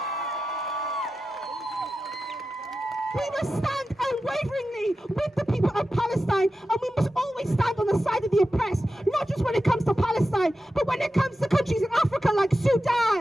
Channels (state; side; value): normal; both; correlation 0.92